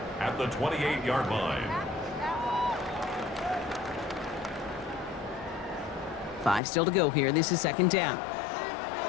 at the 28-yard line. 5 still to go here. This is 2nd down.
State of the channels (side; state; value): right; drops out; at 6.6 s